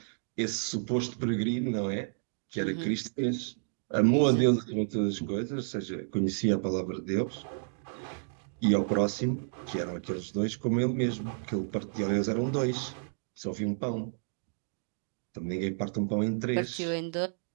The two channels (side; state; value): left; silent; digital silence